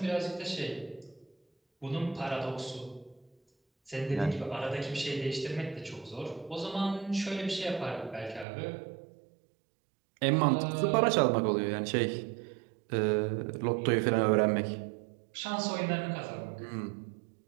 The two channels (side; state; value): left; drops out; at 8.5 s